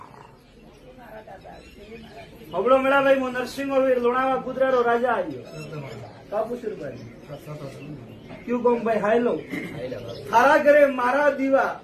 હબળો મેળાભાઈ હું નરસિંહ વીર લોણાવા કુદરારો રાજા આવ્યો કાપુસુરભાઈ ક્યુ કહું ભાઈ હાયલો હારા ઘરે મારા દીવા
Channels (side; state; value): both; identical; correlation 1.00